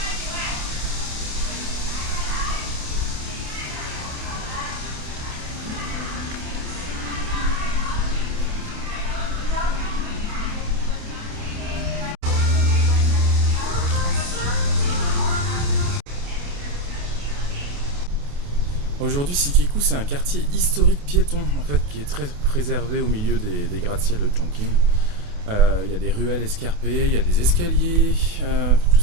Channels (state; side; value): late; left; 28 ms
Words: Aujourd'hui, Sikiku, c'est un quartier historique piéton en fait, qui est très préservé au milieu des gratte-ciel de Chongqing. Il y a des ruelles escarpées, il y a des escaliers, tout